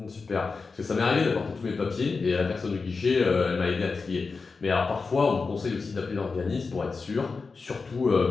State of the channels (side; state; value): right; quieter; 4.5 dB